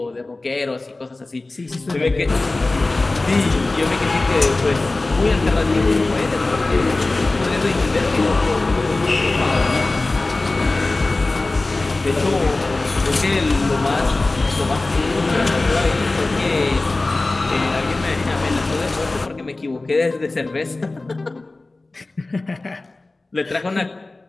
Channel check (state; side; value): quieter; right; 3.1 dB